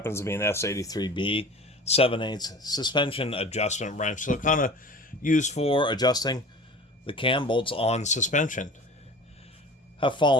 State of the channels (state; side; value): normal; both; correlation 0.39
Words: to be an S83B 7/8 suspension adjustment wrench. So kind of used for adjusting the cam bolts on suspension. Have